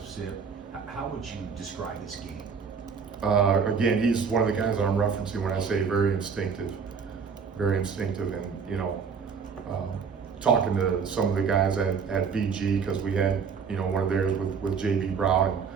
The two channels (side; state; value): left; quieter; 6.0 dB